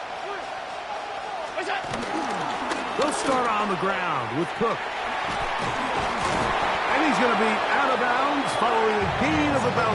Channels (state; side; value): identical; both; correlation 1.00